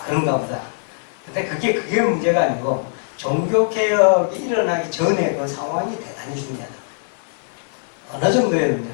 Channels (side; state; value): right; silent; 58 dB below the other